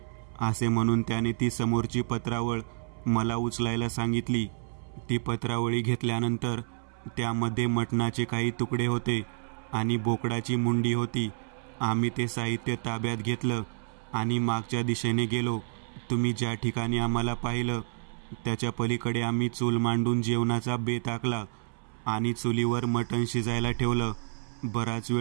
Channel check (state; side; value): silent; left; 58 dB below the other